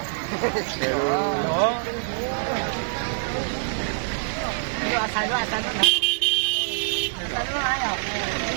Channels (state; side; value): silent; left; digital silence